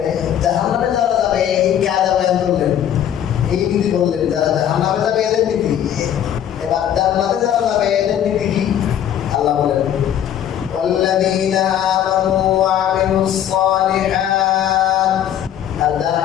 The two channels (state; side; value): quieter; right; 10.3 dB